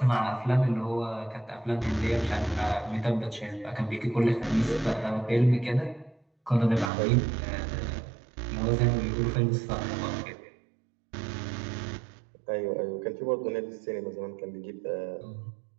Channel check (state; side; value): drops out; left; at 6.9 s